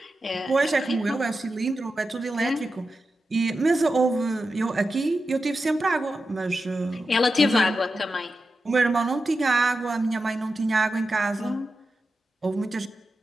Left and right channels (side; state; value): both; normal; correlation 0.91